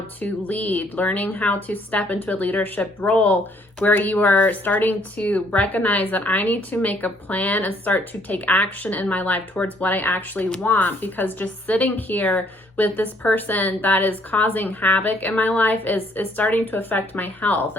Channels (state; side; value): normal; both; correlation 0.65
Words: to lead, learning how to step into a leadership role where you are starting to recognize that I need to make a plan and start to take action in my life towards what I actually want, because just sitting here with this person that is causing havoc in my life is starting to affect my health.